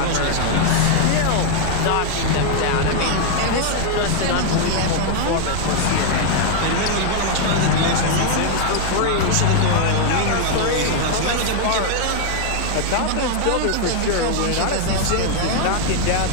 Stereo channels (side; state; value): both; different; correlation 0.00